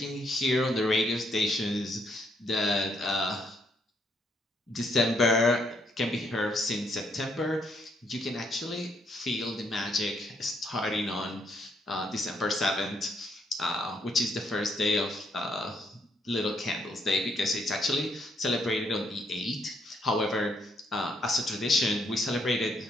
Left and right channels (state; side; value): normal; both; correlation 0.73